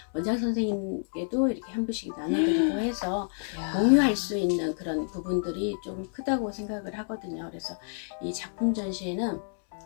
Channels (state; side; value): silent; right; 59 dB below the other